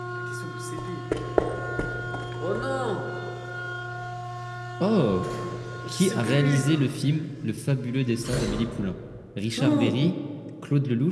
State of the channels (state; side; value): identical; both; correlation 1.00